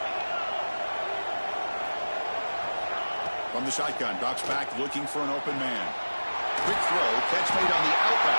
From the shotgun, drops back looking for an open man. Quick throw, catch made on the out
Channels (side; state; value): both; inverted; correlation -1.00